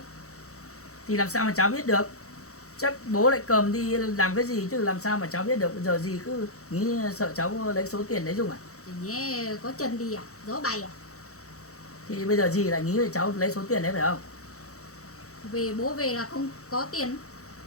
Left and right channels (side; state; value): right; late; 0.65 ms